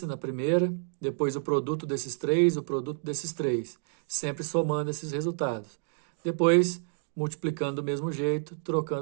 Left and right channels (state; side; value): silent; left; 58 dB below the other